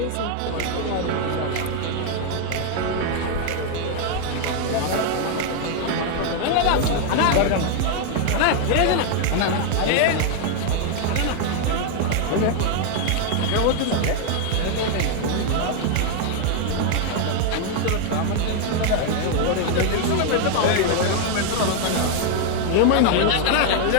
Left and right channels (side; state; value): both; different; correlation 0.00